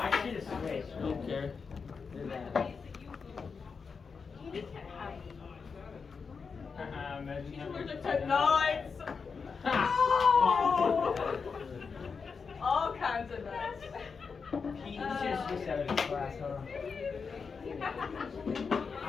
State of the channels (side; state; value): right; quieter; 5.4 dB